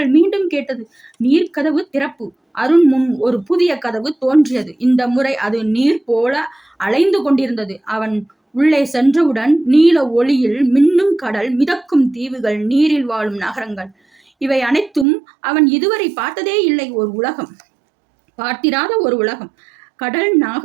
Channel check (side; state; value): left; drops out; at 15.1 s